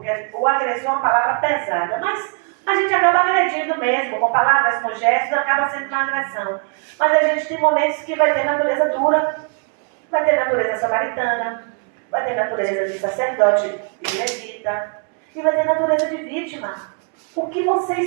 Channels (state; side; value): quieter; left; 39.1 dB